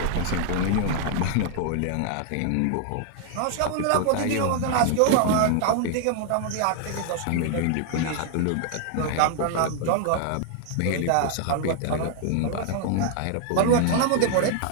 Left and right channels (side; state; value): both; different; correlation 0.00